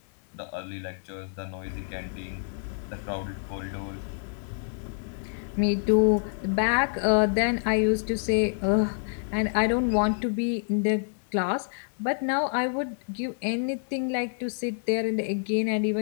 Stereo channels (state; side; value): silent; right; digital silence